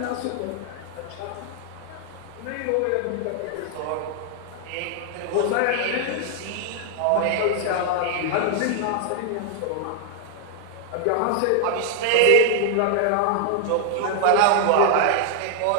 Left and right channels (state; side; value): different; both; correlation 0.00